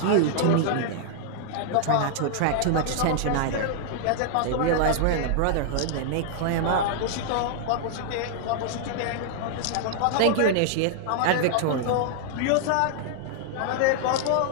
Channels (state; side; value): different; both; correlation -0.01